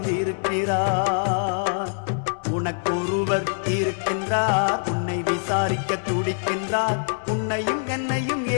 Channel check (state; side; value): silent; right; digital silence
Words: உனக்கொருவர் இருக்கின்றார், உன்னை விசாரிக்க துடிக்கின்றார். உன்னையும் என்னையும்